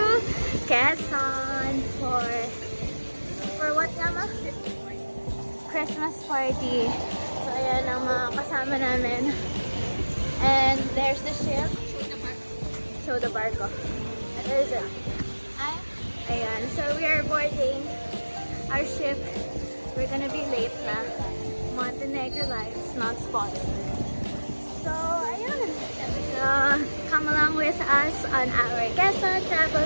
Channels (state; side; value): inverted; both; correlation -1.00